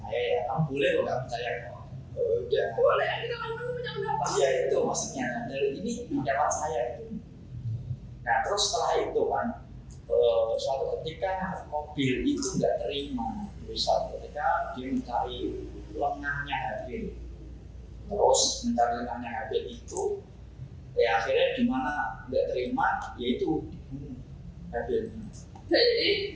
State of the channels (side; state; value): both; identical; correlation 1.00